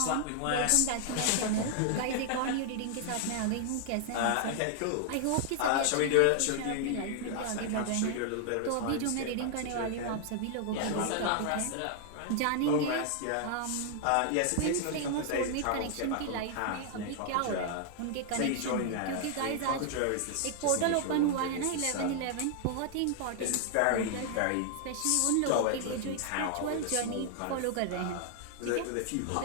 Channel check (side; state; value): both; different; correlation 0.00